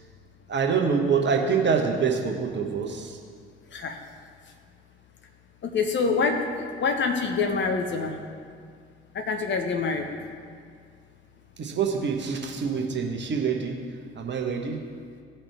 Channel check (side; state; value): left; noise; hum, 29 dB below the sound